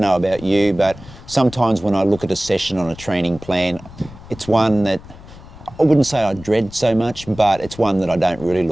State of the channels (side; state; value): left; noise; rumble, 18 dB below the sound